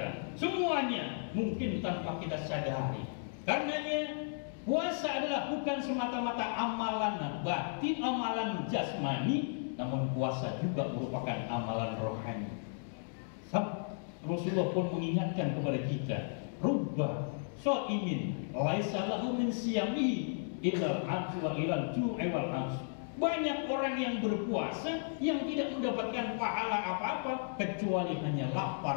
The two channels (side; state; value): right; silent; digital silence